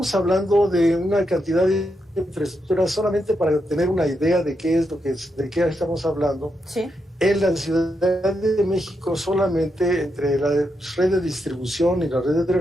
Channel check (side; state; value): both; normal; correlation 0.83